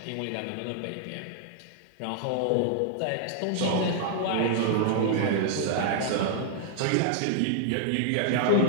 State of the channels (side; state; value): both; different; correlation -0.01